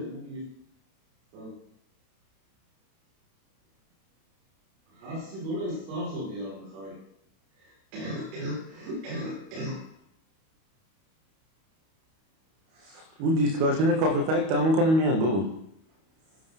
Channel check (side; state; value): left; late; 31 ms